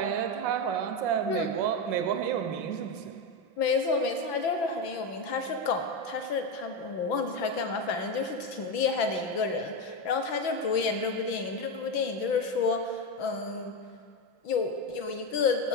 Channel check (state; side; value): late; right; 6.0 ms